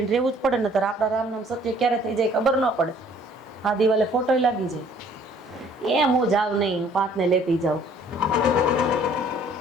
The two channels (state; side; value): normal; both; correlation 0.57